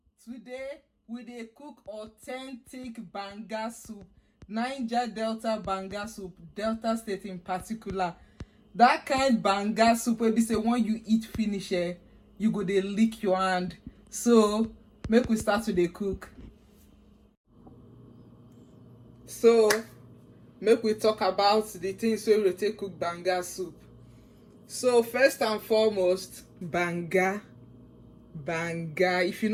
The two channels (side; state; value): both; identical; correlation 1.00